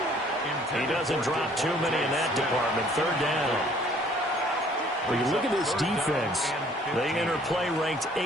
He doesn't drop too many in that department. 3rd down. When you look at this defense, they enter play ranked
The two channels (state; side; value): normal; both; correlation 0.58